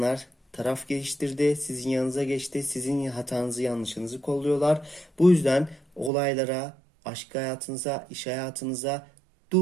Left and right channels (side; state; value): left; drops out; at 6.1 s